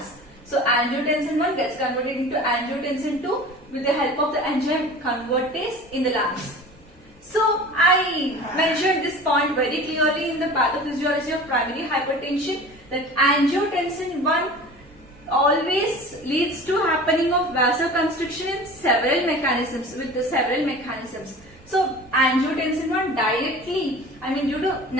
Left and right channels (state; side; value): normal; both; correlation 0.39